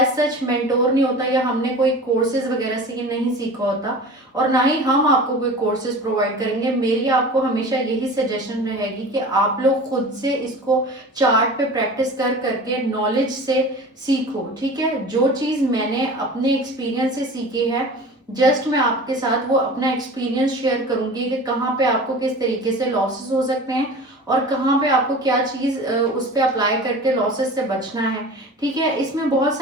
सच मेंटोर नहीं होता, या हमने कोई कोर्सेज वगैरह से ये नहीं सीखा होता, और ना ही हम आपको कोई कोर्सेज प्रोवाइड करेंगे। मेरी आपको हमेशा यही सजेशन रहेगी कि आप लोग खुद से इसको चार्ट पे प्रैक्टिस कर करके नॉलेज से सीखो। ठीक है। जो चीज मैंने अपने एक्सपीरियंस से सीखी है, जस्ट मैं आपके साथ वो अपना एक्सपीरियंस शेयर करूंगी कि कहाँ पे आपको किस तरीके से लॉसेस हो सकते हैं और कहाँ पे आपको क्या चीज उस पर अप्लाई करके लॉसेस से बचना है। ठीक है। इसमें बहुत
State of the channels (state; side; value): normal; both; correlation 0.37